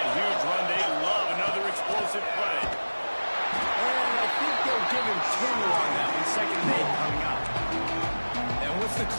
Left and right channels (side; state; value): both; inverted; correlation -1.00